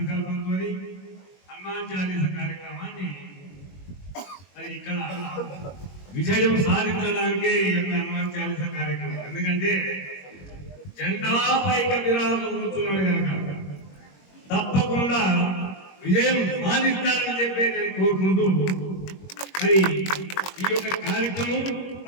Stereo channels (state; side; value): late; right; 21 ms